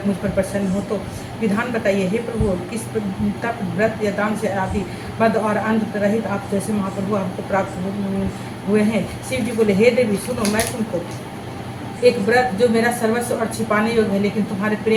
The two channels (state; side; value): identical; both; correlation 1.00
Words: मुझ पर प्रसन्न हो तो विधान बताइए। हे प्रभु, किस तप व्रत या दान से आदि मद और अंध रहित आप जैसे महाप्रभु हमको प्राप्त हुए हैं। शिव जी बोले, हे देवी सुनो, मैं तुमको एक व्रत जो मेरा सर्वस्व और छिपाने योग्य है लेकिन तुम्हारे